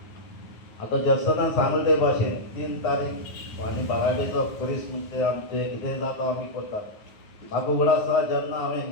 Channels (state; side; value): late; right; 9.4 ms